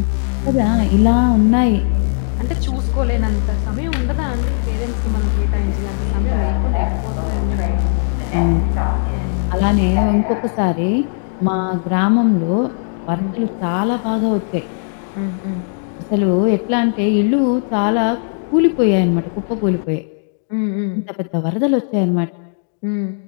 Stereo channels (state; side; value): silent; right; digital silence